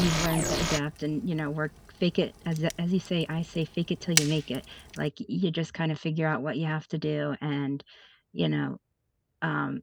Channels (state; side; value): identical; both; correlation 1.00